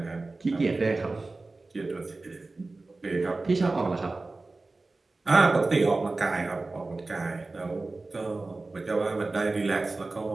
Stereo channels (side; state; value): left; quieter; 3.4 dB